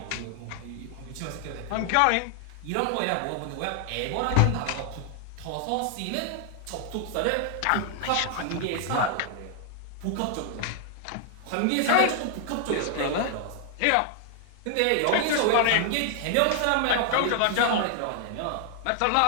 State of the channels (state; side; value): different; both; correlation 0.00